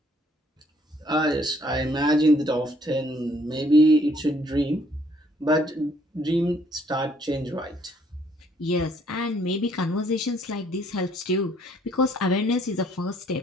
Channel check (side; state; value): both; normal; correlation 0.64